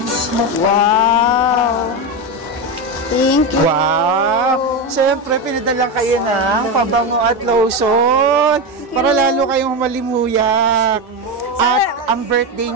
Wow! Thank you. Wow! Syempre, pinadalang kayo ng pabango at lotion para lalo kayong malimuyak. At ang birthday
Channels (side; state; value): both; normal; correlation 0.14